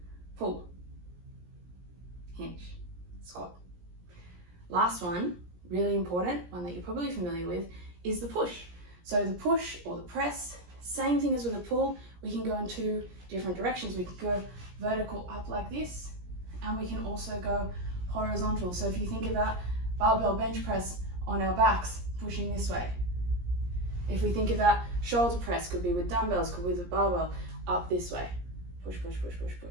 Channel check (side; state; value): left; late; 17 ms